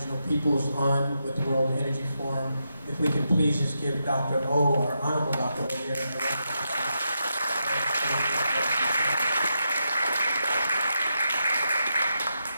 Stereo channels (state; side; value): inverted; both; correlation -0.85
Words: peoples on with the World Energy Forum. If we can please just give Dr. O, our Honorable Dr. O here, a round of applause.